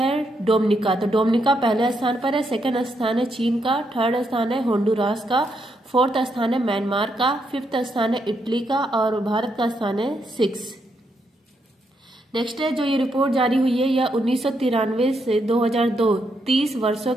डोमिनिका, तो डोमिनिका पहले स्थान पर है। सेकंड स्थान है चीन का, थर्ड स्थान है होंडुरास का, फोर्थ स्थान है म्यांमार का, फिफ्थ स्थान है इटली का और भारत का स्थान है 6। नेक्स्ट है, जो ये रिपोर्ट जारी हुई है यह 1993 से 2002 30 वर्षों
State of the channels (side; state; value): both; normal; correlation 0.79